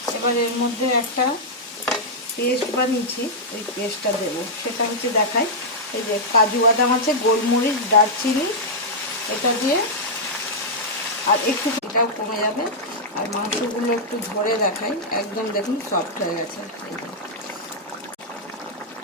এবার এর মধ্যে একটা পেস্ট বানিয়েছি, এই পেস্টটা দেবো, সেটা হচ্ছে দেখাই। এই যে কাজু বাদাম আছে, গোলমরিচ, দারচিনি, এটা দিয়ে আর একটু এটাও কমে যাবে। আর মাংসগুলো একটু ধরে দেখাই, একদম দেখুন সফট হয়ে গেছে।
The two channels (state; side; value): normal; both; correlation -0.07